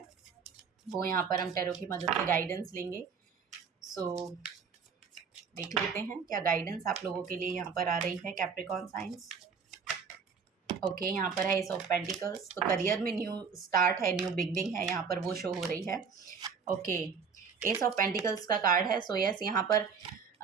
वो यहाँ पर हम टैरो की मदद से गाइडेंस लेंगे। सो देख लेते हैं क्या गाइडेंस आप लोगों के लिए यहाँ पर आ रही है कैप्रिकॉन साइंस। ओके, यहाँ पर है एस ऑफ पेंटिकल्स, तो करियर में न्यू स्टार्ट है, न्यू बिगनिंग है, यहाँ पर वो शो हो रही है। ओके, एस ऑफ पेंटिकल्स का कार्ड है। सो यस, यहाँ पर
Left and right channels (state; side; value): quieter; left; 5.9 dB